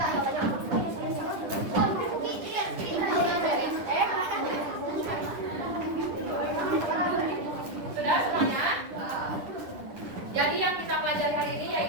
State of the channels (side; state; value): left; late; 10 ms